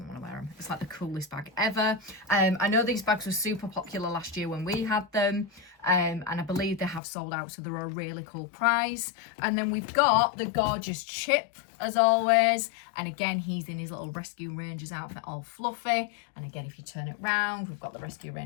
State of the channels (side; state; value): right; drops out; at 7.0 s